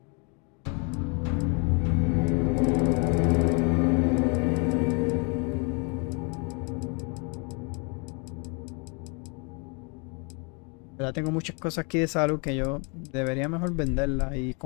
Ya tengo muchas cosas aquí de salud que yo debería mejor venderlas y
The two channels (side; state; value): right; quieter; 34.4 dB